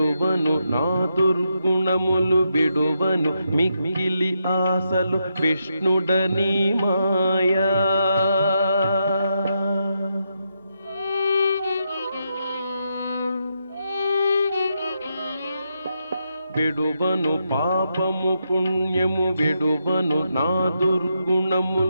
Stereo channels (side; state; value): both; inverted; correlation -0.82